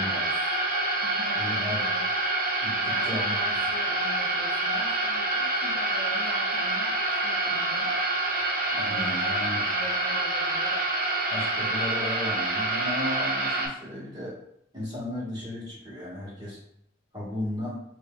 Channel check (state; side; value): normal; both; correlation 0.03